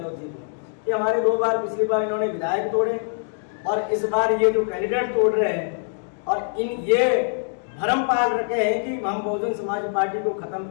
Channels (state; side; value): silent; right; digital silence